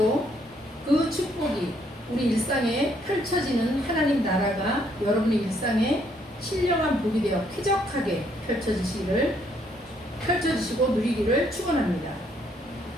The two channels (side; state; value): both; normal; correlation 0.69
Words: 그 축복이 우리 일상에 펼쳐지는 하나님 나라가 여러분의 일상에 신령한 복이 되어 쾌적하게 펼쳐지시고 누리기를 축원합니다.